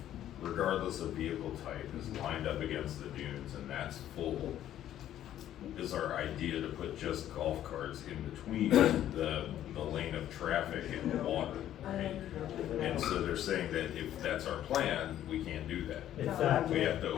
regardless of vehicle type is lined up against the dunes and that's full, is our idea to put just golf carts in between the lane of traffic and the water, right? And so they're saying that if that's our plan, we can't do that. Exactly. We have to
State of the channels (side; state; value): right; quieter; 11.8 dB